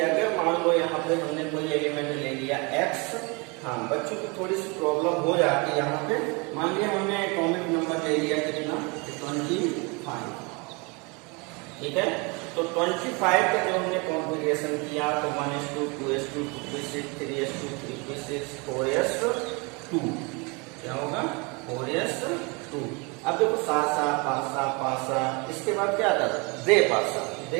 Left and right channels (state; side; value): quieter; left; 29.5 dB